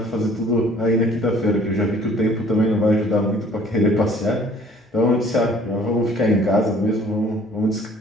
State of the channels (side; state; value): both; normal; correlation 0.55